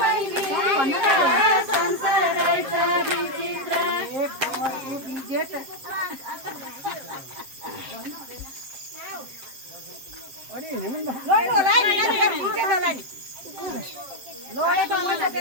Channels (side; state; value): left; late; 7.8 ms